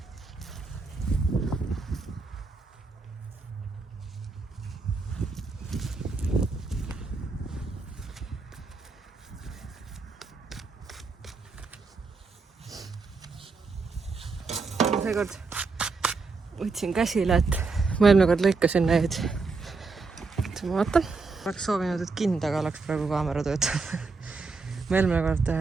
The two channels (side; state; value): left; quieter; 4.2 dB